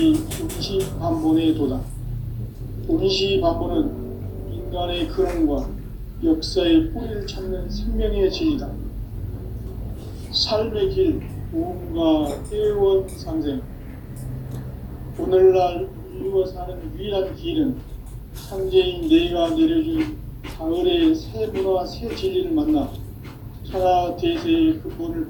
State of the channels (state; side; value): identical; both; correlation 1.00